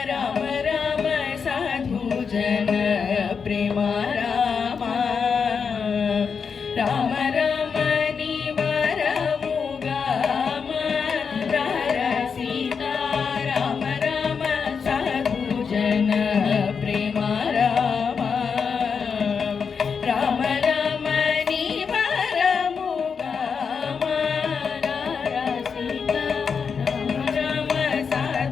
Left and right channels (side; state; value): right; quieter; 6.0 dB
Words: రామ రామ సాధు జన ప్రేమ రామ రామ రమణి వరముగా సీతా రామ రామ సాధు జన ప్రేమ రామ రామ రమణి వరముగా సీతా రామ రామ